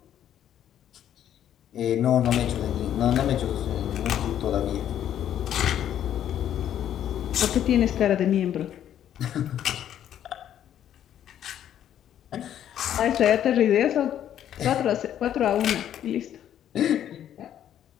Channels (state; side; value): quieter; right; 10.5 dB